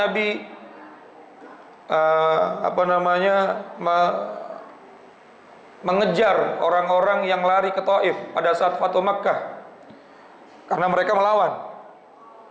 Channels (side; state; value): both; identical; correlation 1.00